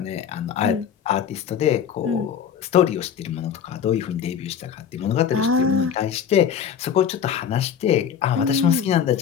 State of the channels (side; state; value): right; quieter; 8.1 dB